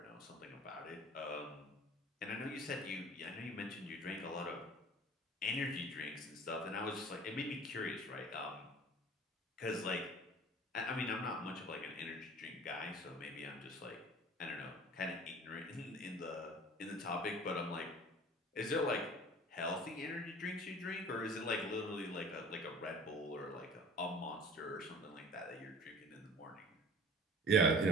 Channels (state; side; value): normal; both; correlation 0.44